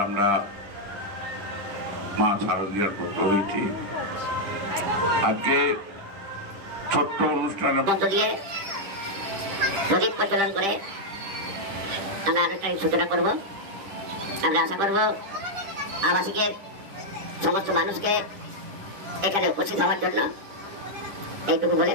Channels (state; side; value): late; left; 10 ms